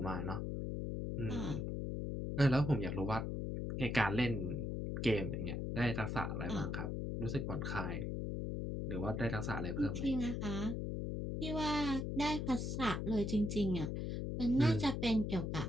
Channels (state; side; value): noise; left; hum, 2 dB below the sound